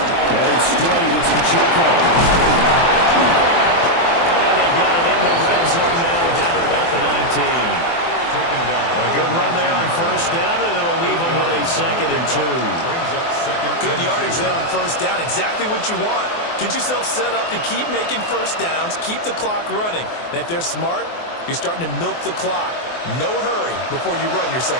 Headed straight, it's Pacheco. And they've got it in the red zone now, down at about the 19. Taken down. A good run there on 1st down, and it'll leave them with a 2nd and 2. Good yardage there on 1st down, exactly what you want. Get yourself set up to keep making 1st downs, keep the clock running. And if they're smart, you're starting to milk the clock. No hurry before you run your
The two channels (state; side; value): late; right; 24 ms